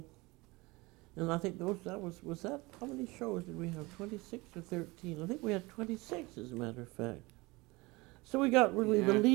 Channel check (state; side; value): quieter; left; 23.3 dB